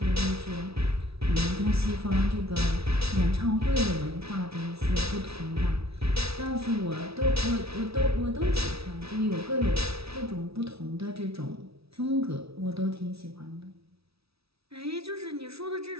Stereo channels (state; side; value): late; left; 0.77 ms